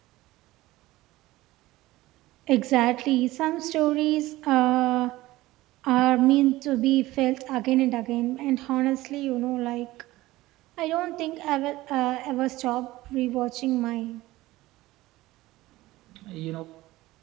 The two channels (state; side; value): quieter; left; 17.8 dB